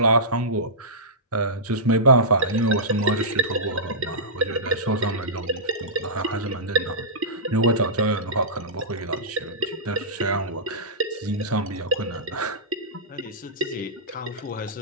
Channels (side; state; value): both; normal; correlation -0.18